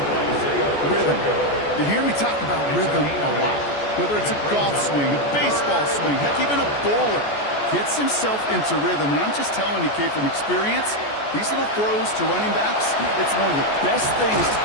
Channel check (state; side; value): late; right; 14 ms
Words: Rhythm. You hear me talk about rhythm a lot. Whether it's a golf swing, a baseball swing, heck, even a bowler gets himself into rhythm. And I'm just telling you, kid, from experience, these little throws to running backs, it's one of the best things to